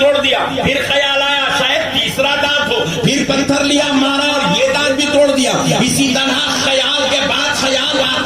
دیا۔ پھر خیال آیا شاید تیسرا دانت ہو، پھر پتھر لیا، مارا اور یہ دانت بھی توڑ دیا۔ اسی طرح خیال کے بعد خیال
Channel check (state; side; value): identical; both; correlation 1.00